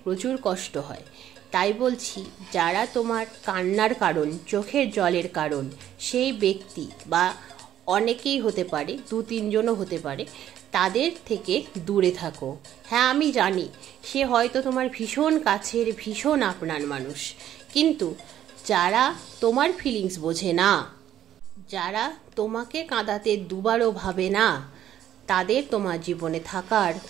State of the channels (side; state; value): left; quieter; 11.4 dB